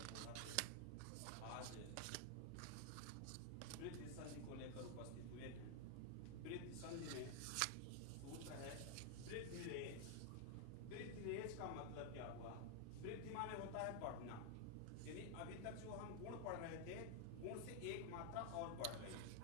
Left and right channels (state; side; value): different; both; correlation 0.00